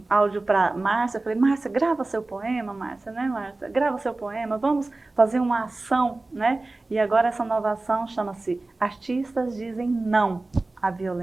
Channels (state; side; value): quieter; left; 3.1 dB